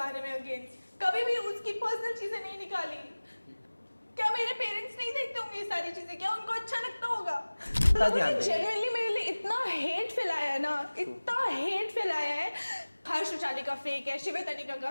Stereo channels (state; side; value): inverted; both; correlation -1.00